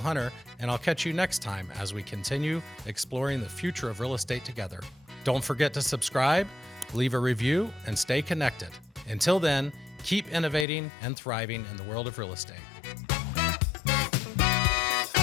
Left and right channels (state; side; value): drops out; right; at 10.7 s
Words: Hunter, and I'll catch you next time as we continue exploring the future of real estate together. Don't forget to subscribe, leave a review, and stay connected. Until then, keep innovating and thriving in the world of real estate.